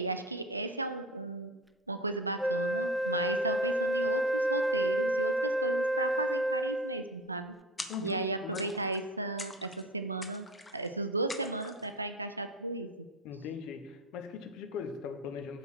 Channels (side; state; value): both; normal; correlation 0.34